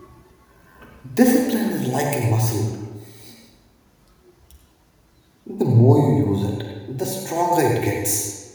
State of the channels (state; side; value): identical; both; correlation 1.00